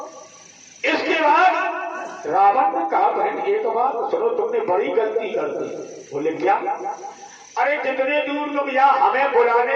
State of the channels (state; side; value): identical; both; correlation 1.00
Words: इसके बाद रावण ने कहा बहन एक बात सुनो, तुमने बड़ी गलती कर दी। बोले क्या? अरे जितने दूर तुम यहाँ हमें